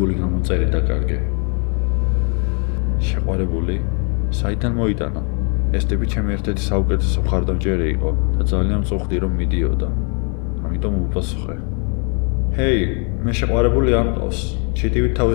გამომწერი დაკარგე. შეყვარებული? საიდან მოიტანა? ეს ტიპი ჩემი ერთ-ერთი საუკეთესო მხარდამჭერი იყო და ძალიან მწუხდი, რომ მიდიოდა. ამიტომ უპასუხე. ჰეი, მე შეყვარებული არ მყავს. ჩიტივით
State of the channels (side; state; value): right; quieter; 38.3 dB